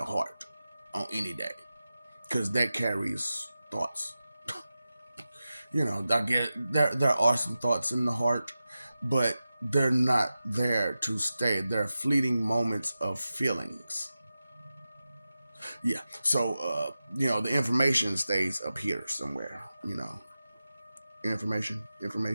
heart on any day because that carries thoughts. I get there are some thoughts in the heart, but they're not there to stay. They're fleeting moments of feelings. Yeah. So the information stays up here somewhere. Information.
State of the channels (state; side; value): inverted; both; correlation -0.94